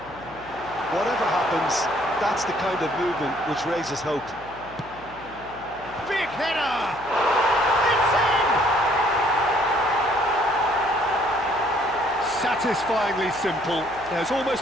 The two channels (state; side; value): noise; left; hum, 20 dB below the sound